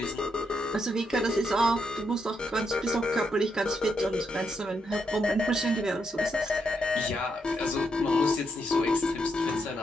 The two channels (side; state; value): both; normal; correlation 0.80